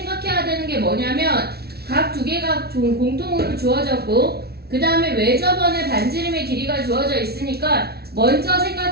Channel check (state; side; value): late; left; 0.46 ms